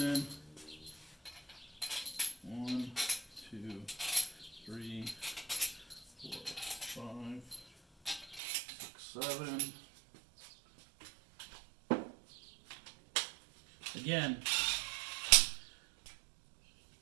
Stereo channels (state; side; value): drops out; left; at 8.4 s